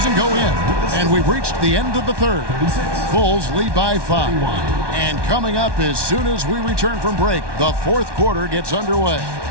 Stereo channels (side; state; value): left; late; 1.2 ms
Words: go in. And we've reached the end of the third. Bulls lead by 5. And coming up as soon as we return from break, the fourth quarter gets underway.